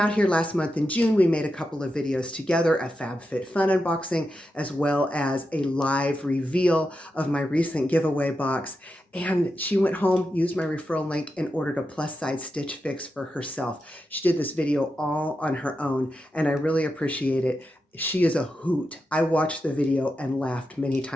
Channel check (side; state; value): both; normal; correlation 0.88